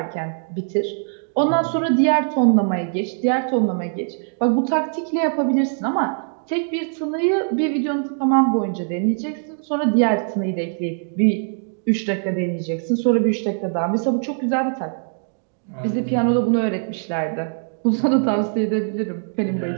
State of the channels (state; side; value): silent; left; digital silence